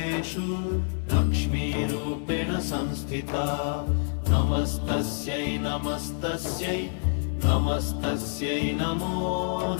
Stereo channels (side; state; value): right; silent; digital silence